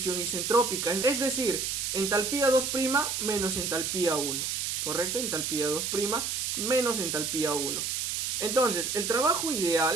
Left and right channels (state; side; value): noise; right; hiss, 1 dB below the sound